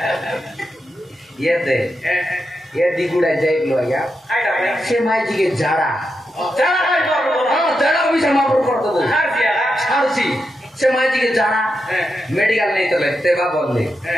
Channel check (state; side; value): normal; both; correlation 0.86